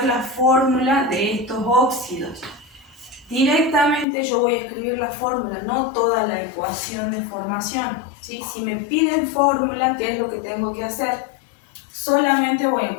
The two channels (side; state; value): right; drops out; at 4.0 s